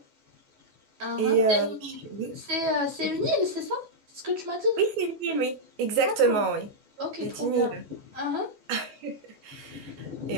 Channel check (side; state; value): left; late; 14 ms